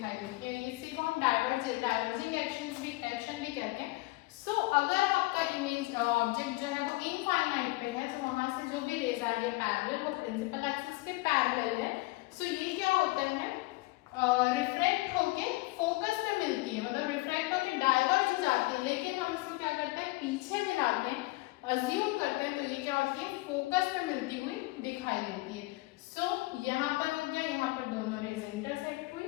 देती है, इसी को हम डाइवर्जिंग एक्शन भी कहते हैं। सो अगर आपका इमेज ऑब्जेक्ट जो है वो इनफाइनाइट पे है तो वहां से जो भी रेज आ रही है पैरेलल, वो प्रिंसिपल एक्सिस के पैरेलल है। सो ये क्या होता है, रिफ्रैक्ट होके फोकस पे मिलती है, मतलब रिफ्रैक्ट होके डाइवर्ज हो जाती है, लेकिन हम इसको क्या करते हैं पीछे मिलाते हैं, अज्यूम करते हैं, तो ये क्या होती है फोकस पे मिलती हुई दिखाई देती है। सो यहाँ पर हो गया, यहाँ पर दोनों रेज इंटरसेक्ट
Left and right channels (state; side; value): quieter; right; 21.7 dB